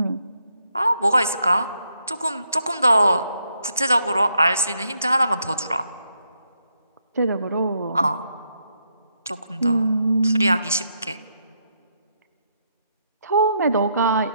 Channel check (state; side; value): inverted; both; correlation -0.77